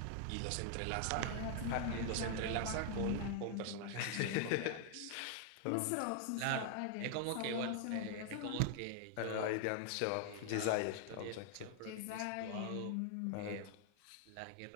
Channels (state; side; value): different; both; correlation 0.00